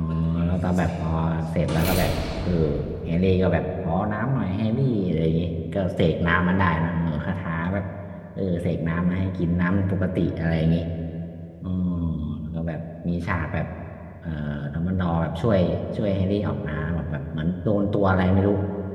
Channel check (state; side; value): identical; both; correlation 1.00